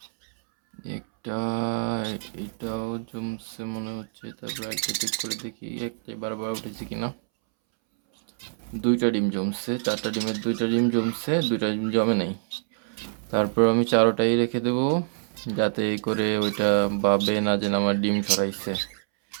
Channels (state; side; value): silent; left; 61 dB below the other